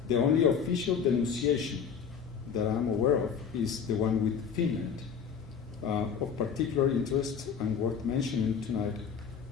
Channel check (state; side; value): quieter; right; 6.9 dB